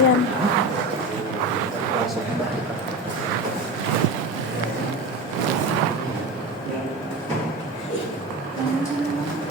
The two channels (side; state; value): both; normal; correlation 0.27